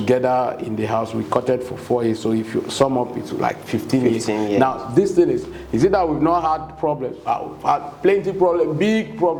in the house, we courted for 4 years. So if you sum up, it's like 15 years. Now, this thing is it that we've not had problems? We've had plenty of problems, big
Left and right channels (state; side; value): identical; both; correlation 1.00